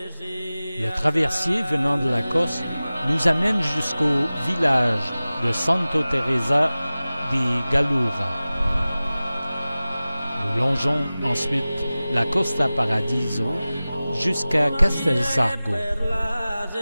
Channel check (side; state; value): both; inverted; correlation -0.97